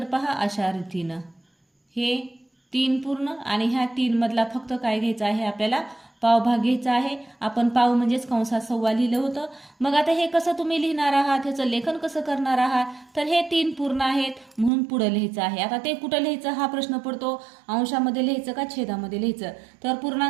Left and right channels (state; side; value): drops out; left; at 14.7 s